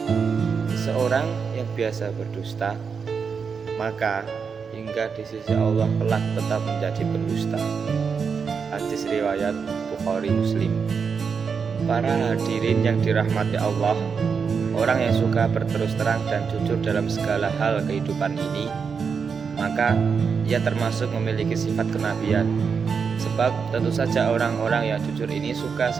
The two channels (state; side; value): quieter; left; 5.9 dB